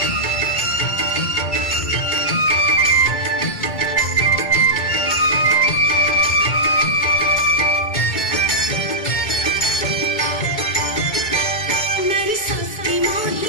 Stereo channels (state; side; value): late; right; 2.3 ms